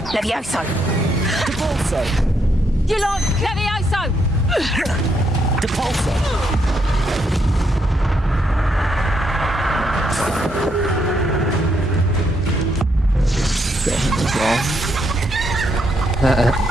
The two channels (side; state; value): both; normal; correlation 0.76